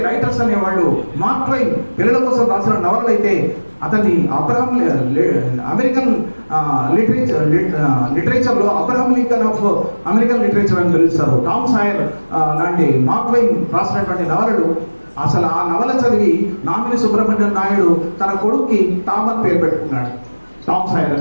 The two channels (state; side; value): inverted; both; correlation -1.00